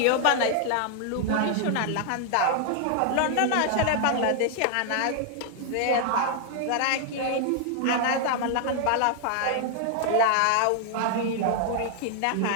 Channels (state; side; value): different; both; correlation 0.00